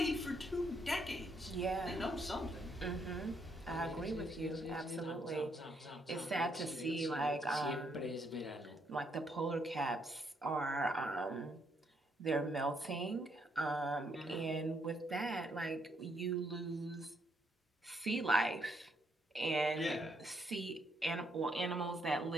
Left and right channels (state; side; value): normal; both; correlation 0.74